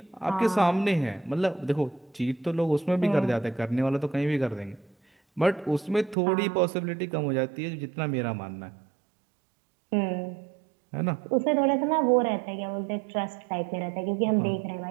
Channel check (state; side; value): drops out; left; at 6.2 s